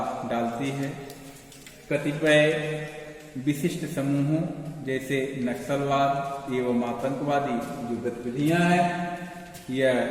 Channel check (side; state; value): both; identical; correlation 1.00